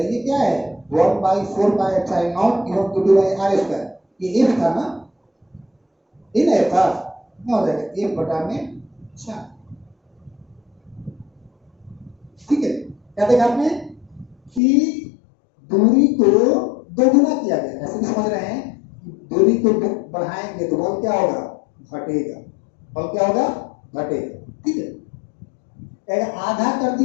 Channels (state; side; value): drops out; right; at 14.6 s